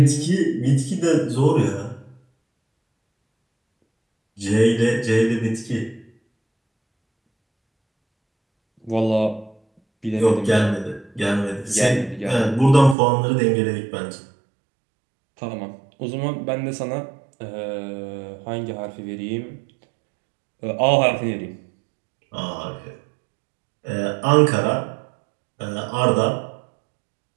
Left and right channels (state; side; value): drops out; left; at 13.0 s